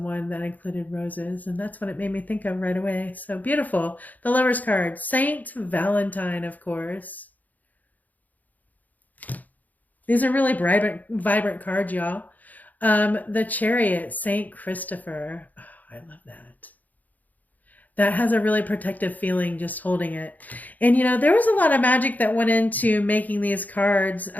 that included roses, and that's what it made me think of right away. So beautiful. The Lover's card, Saint Valentine, of course. These are really vibrant cards, y'all. The Chariot, Saint Christopher. Oh, I love that. That has a really protective feeling just holding it. And, you know, there was a lot of magic that went into making these cards.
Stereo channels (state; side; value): late; right; 0.080 ms